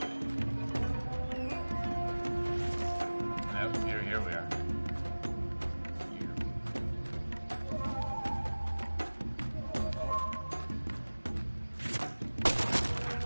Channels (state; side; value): inverted; both; correlation -1.00